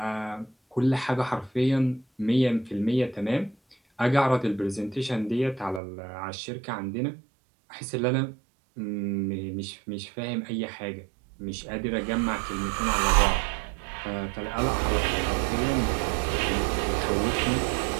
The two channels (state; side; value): drops out; left; at 5.8 s